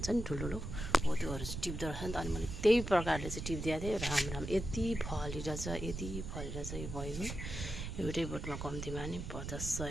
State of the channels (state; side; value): noise; right; rumble, 6 dB below the sound